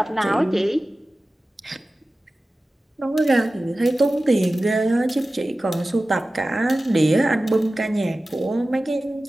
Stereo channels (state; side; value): normal; both; correlation 0.96